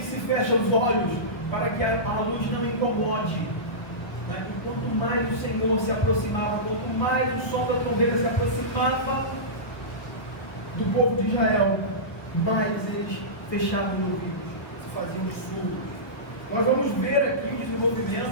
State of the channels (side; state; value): right; late; 1.2 ms